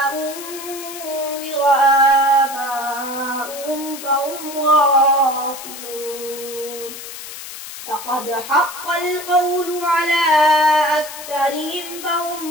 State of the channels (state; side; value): noise; left; hiss, 11 dB below the sound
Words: أنذر آباؤهم فهم غافلون. لقد حق القول على أكثرهم فهم